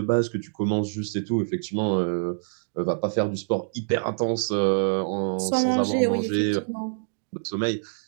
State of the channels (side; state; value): left; silent; digital silence